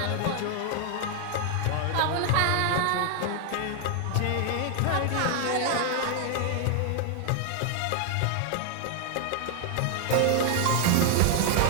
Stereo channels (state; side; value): different; both; correlation 0.00